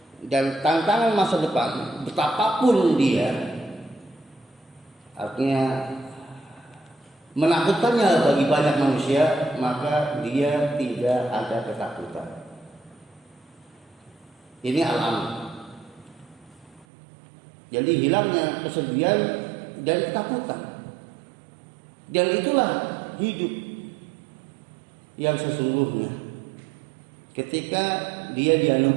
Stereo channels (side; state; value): left; drops out; at 16.9 s